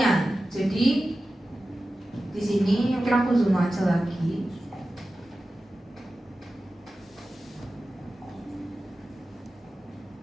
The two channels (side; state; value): both; normal; correlation 0.94